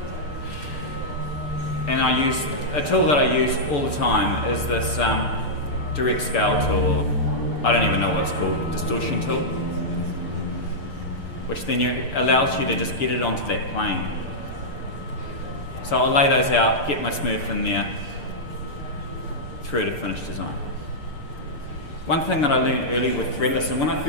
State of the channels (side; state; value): right; late; 6.8 ms